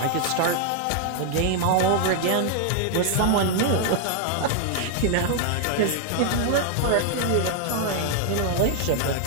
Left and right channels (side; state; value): both; different; correlation 0.00